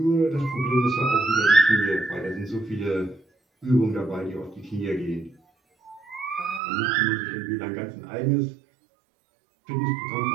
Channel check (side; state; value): left; drops out; at 6.6 s